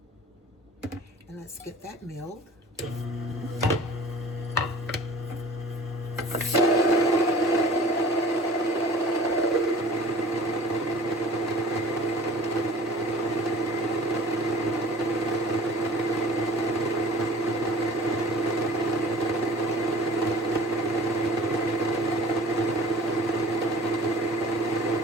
And let's get that milled.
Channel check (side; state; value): both; normal; correlation 0.45